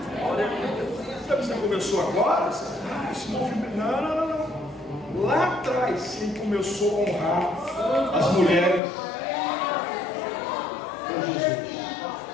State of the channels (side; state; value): right; drops out; at 8.8 s